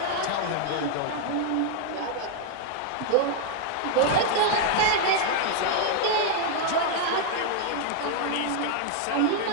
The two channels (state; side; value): different; both; correlation 0.00